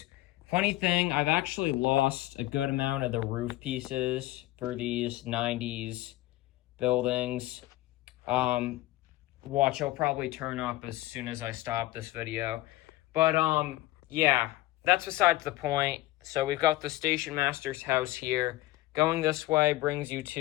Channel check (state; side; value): quieter; right; 17.4 dB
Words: Funny thing, I've actually lost a good amount of the roof pieces for these 90s buildings. Watch, I'll probably turn up as soon as I stop this video. But yeah, that's besides the point. So we've got the station master's house here. Going this way brings you